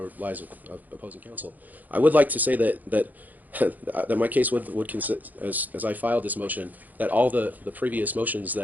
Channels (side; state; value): left; late; 0.082 ms